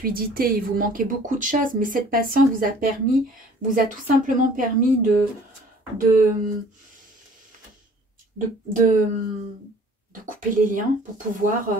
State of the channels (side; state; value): both; normal; correlation 0.51